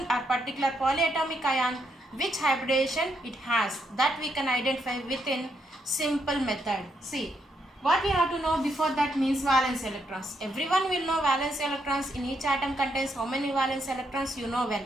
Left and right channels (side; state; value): both; normal; correlation 0.78